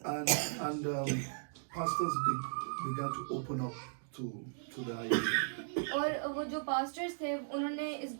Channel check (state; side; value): silent; left; digital silence